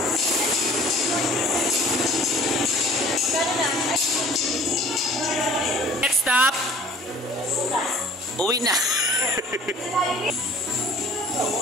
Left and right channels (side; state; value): both; normal; correlation 0.49